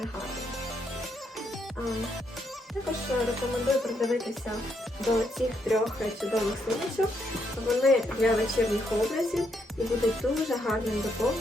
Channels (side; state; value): both; normal; correlation 0.77